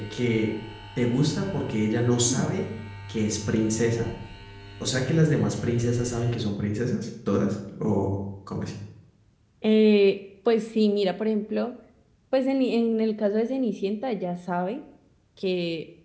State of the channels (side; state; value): both; identical; correlation 1.00